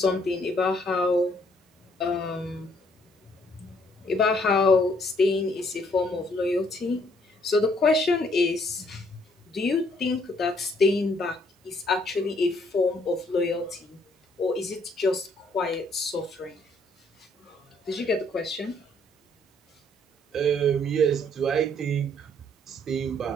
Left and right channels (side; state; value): both; normal; correlation 0.66